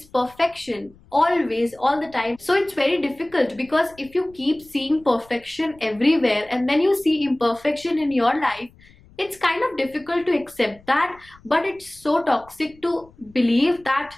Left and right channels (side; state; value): left; noise; rumble, 27 dB below the sound